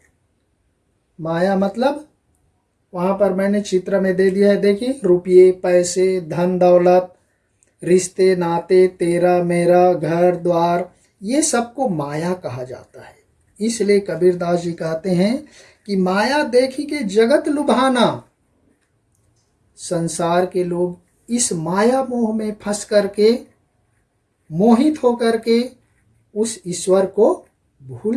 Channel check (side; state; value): both; identical; correlation 1.00